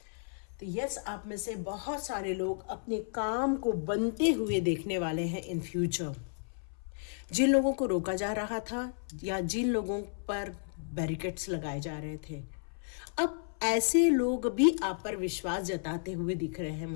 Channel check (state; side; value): silent; right; 56 dB below the other